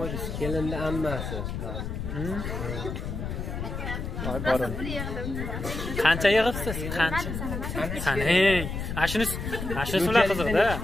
Kelinni ammasi. Voy borim. Qancha yig'ibsiz? Qancha? Sanang. Ashuni ular qiziqda.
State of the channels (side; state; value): left; noise; rumble, 5 dB below the sound